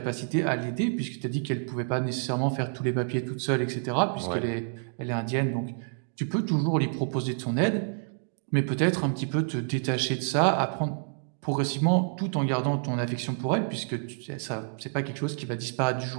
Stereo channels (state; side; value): silent; left; digital silence